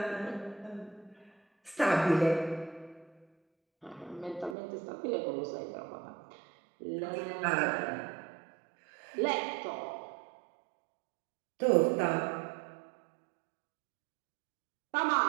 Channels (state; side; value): drops out; left; at 4.5 s